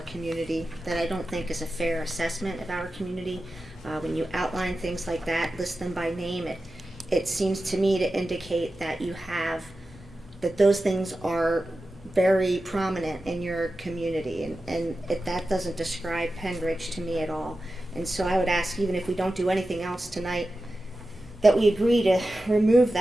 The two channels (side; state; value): both; normal; correlation 0.93